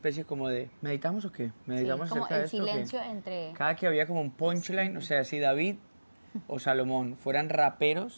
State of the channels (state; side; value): inverted; both; correlation -1.00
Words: como de ¿meditamos o qué? Sí, ¿Meditamos como acerca de el esto o qué? silencio entre... Cada que había como un punchline, o sea, si David o Salomón fueran